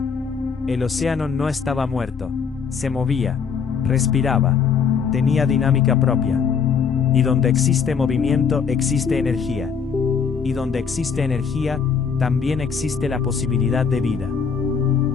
El océano no estaba muerto, se movía, respiraba, tenía dinámica propia. Y donde existe movimiento existe energía. Y donde existe energía, también existe la posibilidad de vida.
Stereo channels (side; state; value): right; quieter; 6.3 dB